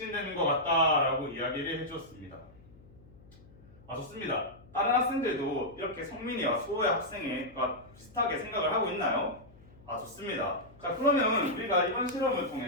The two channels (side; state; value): left; noise; hum, 24 dB below the sound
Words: 것 같다라고 이야기를 해주었습니다. 아, 좋습니다. 다른 학생들도 이렇게 성민이와 수호의 학생과 비슷하게 생각을 하고 있나요? 아, 좋습니다. 자, 그러면 우리가 이번 실험을